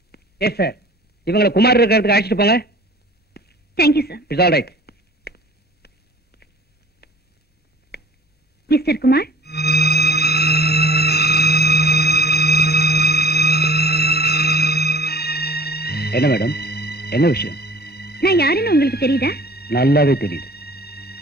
Yes sir. இவங்களை குமார் இருக்கிறதுக்கு அழைச்சிட்டு போங்க. Thank you sir. It's all right. Mister Kumar, என்ன மேடம், என்ன விஷயம்? நான் யாருன்னு உங்களுக்கு தெரியுதா? நல்லாவே தெரியுது.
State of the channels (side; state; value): both; normal; correlation 0.48